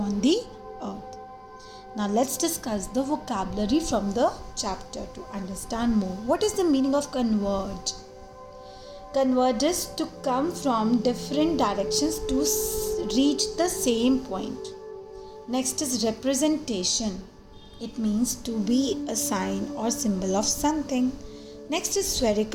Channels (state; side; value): identical; both; correlation 1.00